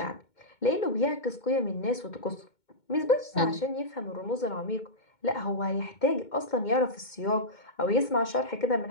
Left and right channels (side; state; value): right; late; 2.2 ms